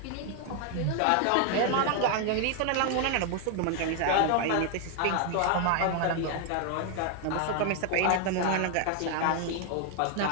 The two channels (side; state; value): both; different; correlation 0.00